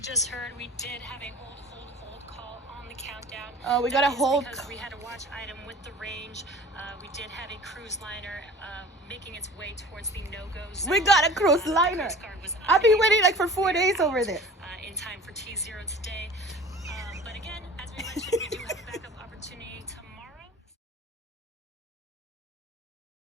heard, we did have a hold call on the countdown. Oh, we got a hold because we had a watch item with the range. We did have a cruise liner making its way towards the no-go zone. We got a cruise liner. I've been waiting like for 4 days over there. In time for T0 today. But again, as we mentioned, we do have a backup opportunity tomorrow.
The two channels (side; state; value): both; normal; correlation 0.43